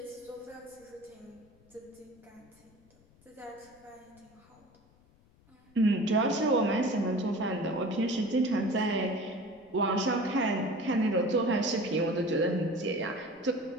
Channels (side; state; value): left; noise; rumble, 29 dB below the sound